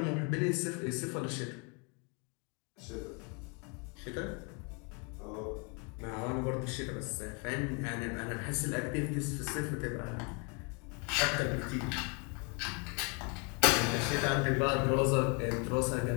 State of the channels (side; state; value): right; quieter; 33.6 dB